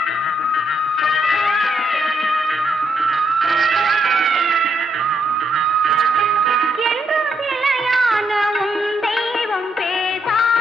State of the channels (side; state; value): both; normal; correlation 0.77